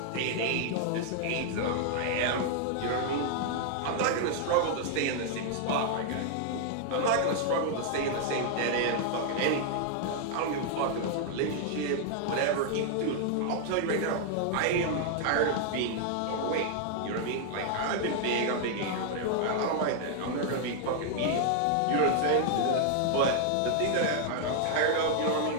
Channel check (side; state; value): both; different; correlation 0.00